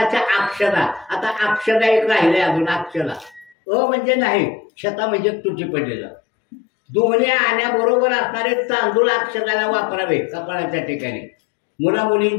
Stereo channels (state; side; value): drops out; right; at 3.6 s